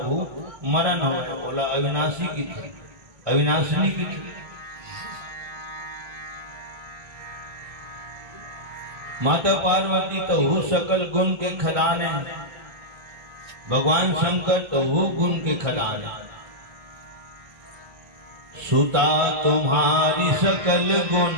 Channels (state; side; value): late; left; 2.3 ms